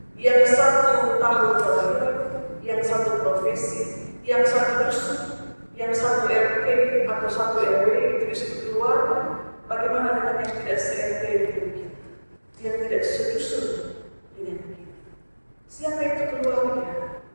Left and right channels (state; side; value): inverted; both; correlation -1.00